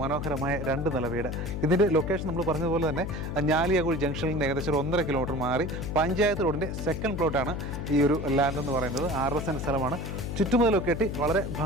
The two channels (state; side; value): noise; left; hum, 5 dB below the sound